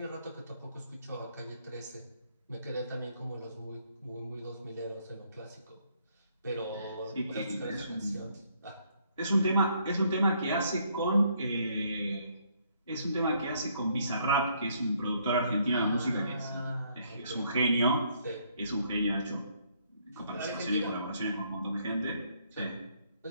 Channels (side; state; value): both; inverted; correlation -0.68